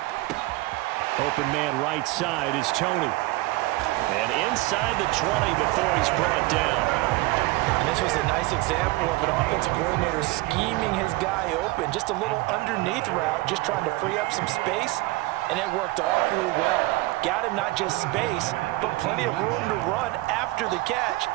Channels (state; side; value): quieter; left; 20.2 dB